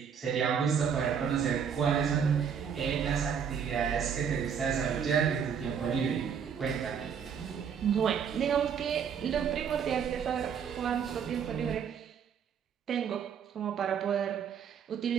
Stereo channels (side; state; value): left; quieter; 7.4 dB